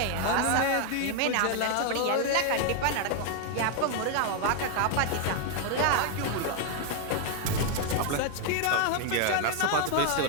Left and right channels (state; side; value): different; both; correlation 0.00